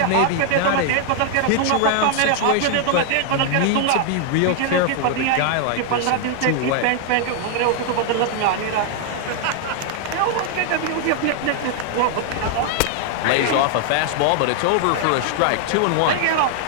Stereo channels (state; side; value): different; both; correlation 0.00